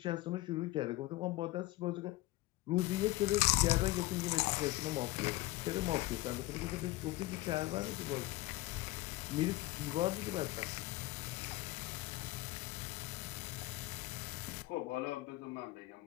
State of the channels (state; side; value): quieter; right; 19.2 dB